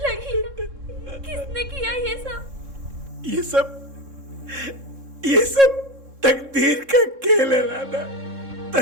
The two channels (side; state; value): left; late; 3.7 ms